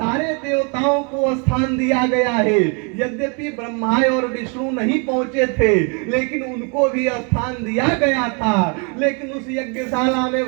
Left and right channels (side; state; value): left; quieter; 35.7 dB